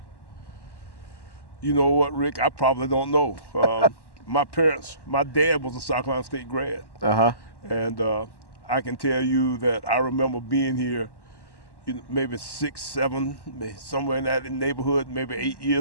You know what, Rick? I probably don't know. My dad was a South Carolina State grad. Uh-huh. And I can tell you that I remember being here, maybe 6, 7, somewhere in that neighborhood, maybe 8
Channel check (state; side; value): late; right; 1.1 ms